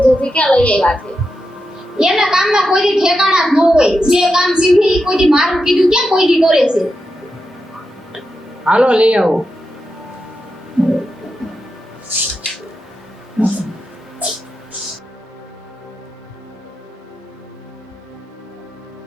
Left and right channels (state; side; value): normal; both; correlation 0.88